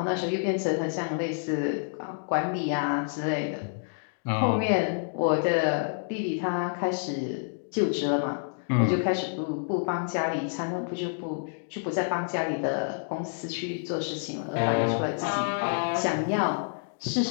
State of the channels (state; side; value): silent; right; digital silence